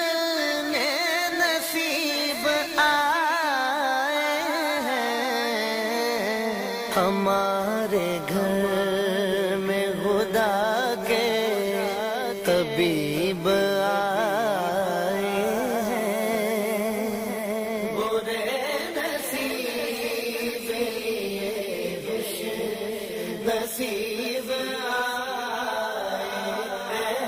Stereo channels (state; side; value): identical; both; correlation 1.00